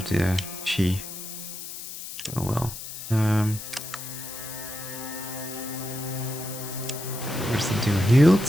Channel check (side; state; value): left; noise; hiss, 10 dB below the sound